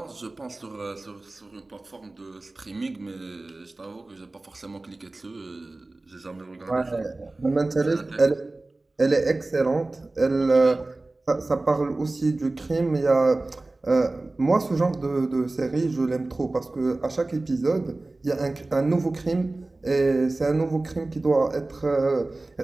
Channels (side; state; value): left; quieter; 3.0 dB